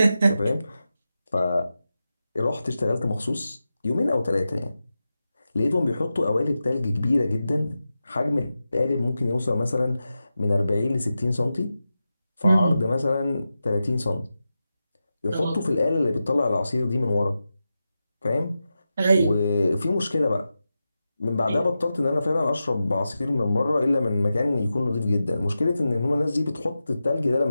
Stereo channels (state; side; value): inverted; both; correlation -0.92